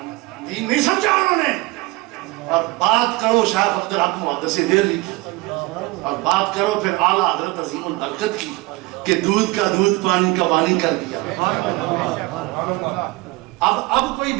دین نہیں سمجھا انہوں نے. اور بات کرو شیخ عبدالحق محدث دہلوی کی، اور بات کرو پھر اعلیٰ حضرت عظیم البرکت کی کہ دودھ کا دودھ پانی کا پانی کر دیا. اب کوئی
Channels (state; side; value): quieter; left; 22.2 dB